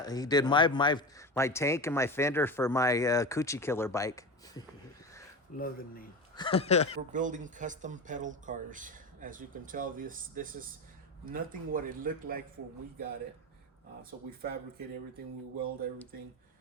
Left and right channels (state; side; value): normal; both; correlation 0.24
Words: He did my tank and my fender for my �ㄐ𝐞𝐭'𝐬 killer bike. Love the name. We're building custom pedal cars. As you can tell, this is nothing what it looked like when we got it. So we fabricate everything, we weld everything,